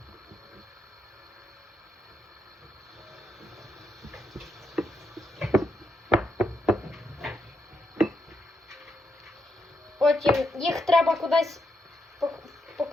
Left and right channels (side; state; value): both; normal; correlation 0.81